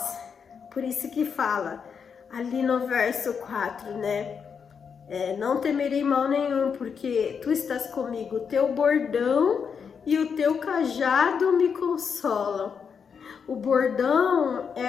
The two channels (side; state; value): right; quieter; 6.5 dB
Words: Por isso que fala ali no verso 4, né? Não temerei mal nenhum, porque tu estás comigo, o teu bordão e o teu cajado me consolam. O bordão